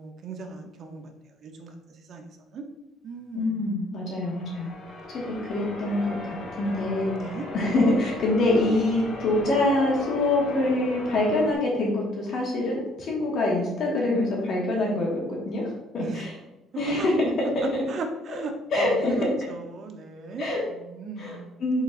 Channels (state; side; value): normal; both; correlation 0.62